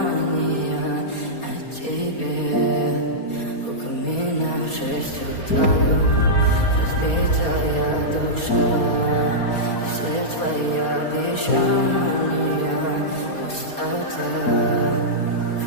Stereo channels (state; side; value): late; right; 4.3 ms